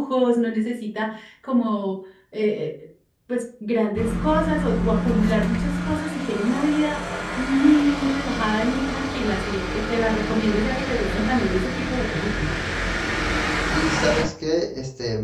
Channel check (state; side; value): identical; both; correlation 1.00